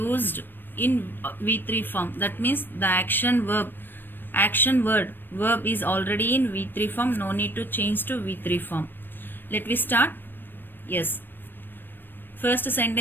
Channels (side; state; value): right; late; 0.095 ms